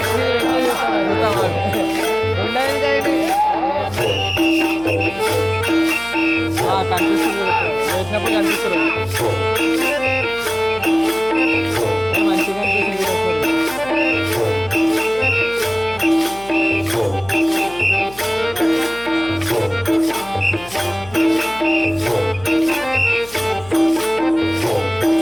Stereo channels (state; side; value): noise; left; hum, 20 dB below the sound